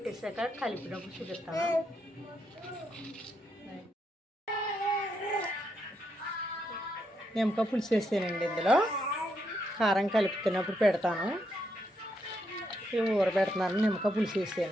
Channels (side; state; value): both; normal; correlation 0.79